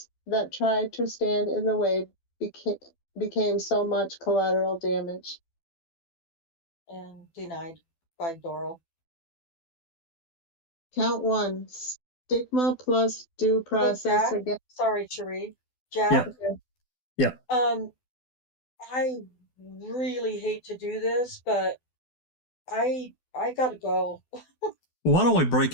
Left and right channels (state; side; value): late; right; 12 ms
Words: that tried to stand in the way became so much collateral damage. And denied by Dorrel. Count 1, stigma plus due process Jack, against. sorry, Cherie. Jack. Yeah. I really hate to do this, but I gotta go. Why don't we break